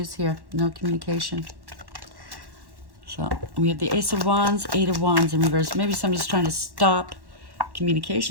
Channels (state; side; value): late; left; 1.1 ms